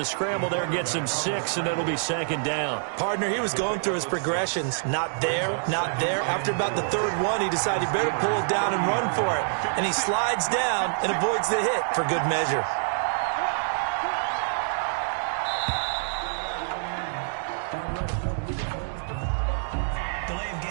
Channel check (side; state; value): left; silent; digital silence